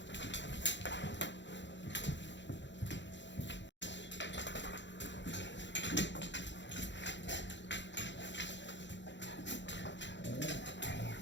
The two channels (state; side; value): late; right; 0.53 ms